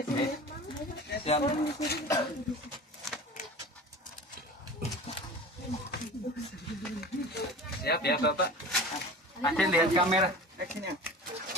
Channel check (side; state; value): both; normal; correlation 0.36